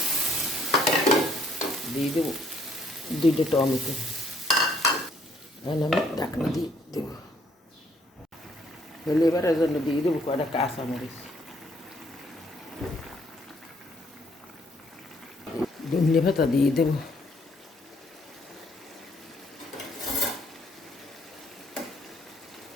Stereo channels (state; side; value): normal; both; correlation 0.66